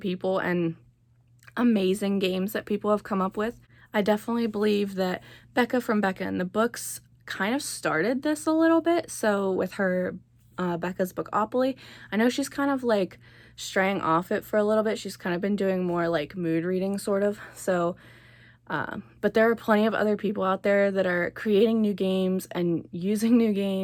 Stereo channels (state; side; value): identical; both; correlation 1.00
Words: people and amazing games that people have come up with. I definitely believe that Becca from Becca in the Books kind of started this a little bit. So with her Becca's Bookopoly, I know she's kind of like straying off it for a little bit. She's kind of been doing more like mood reading sort of. So but there are plenty of other people out there that are creating new games and using new